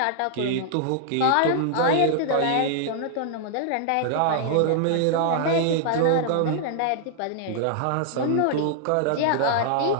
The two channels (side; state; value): both; different; correlation -0.01